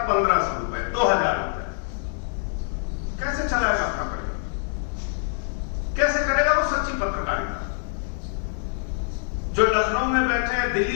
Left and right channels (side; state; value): right; silent; digital silence